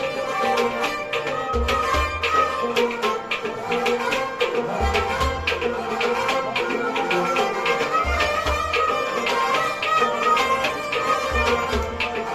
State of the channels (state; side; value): identical; both; correlation 1.00